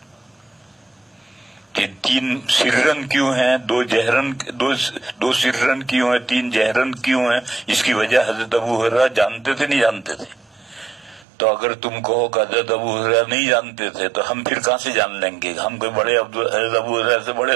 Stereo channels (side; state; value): left; drops out; at 11.2 s